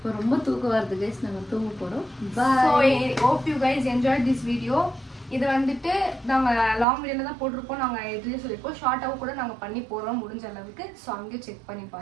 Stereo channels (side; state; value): left; drops out; at 6.9 s